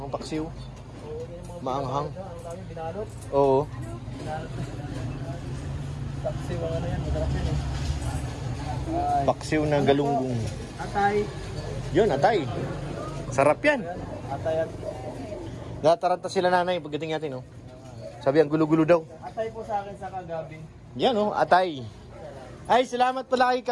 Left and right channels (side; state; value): both; identical; correlation 1.00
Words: paksiw. Maanghang. Oo. Paksiw ang ano yan, masarap yan eh. Paksiw na galunggong. Atay. Yun, atay. Sarap yan. Atay at... Nataranta sila nanay pagdating natin, no? Sabi ang gulo-gulo daw. Atay po sa akin sa kagabi. Yan, no? Atay. Ay, salamat pala kay